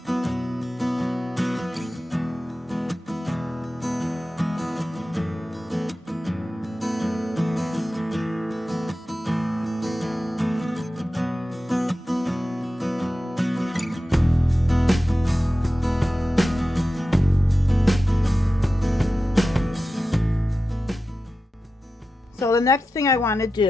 So the next thing I want to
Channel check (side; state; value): both; normal; correlation 0.93